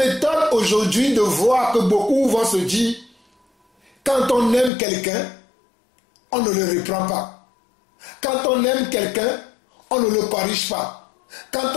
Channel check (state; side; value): drops out; right; at 4.7 s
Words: aujourd'hui de voir que beaucoup vont se dire, quand on aime quelqu'un, on ne le reprend pas. Quand on aime quelqu'un, on ne le corrige pas. Quand